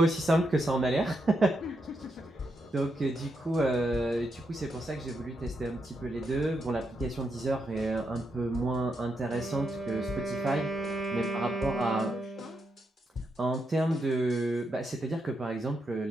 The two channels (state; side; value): normal; both; correlation 0.82